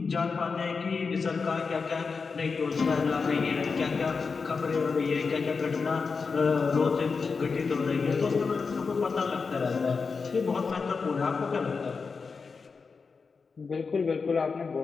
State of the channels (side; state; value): right; quieter; 4.9 dB